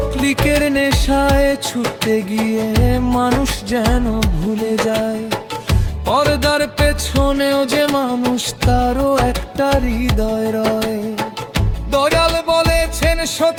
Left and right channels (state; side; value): identical; both; correlation 1.00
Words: ক্লিকের নেশায় ছুটতে গিয়ে মানুষ যেন ভুলে যায়, পর্দার পেছনেও যে মানুষ, তারও একটা হৃদয় রয়। দয়াল বলেছেন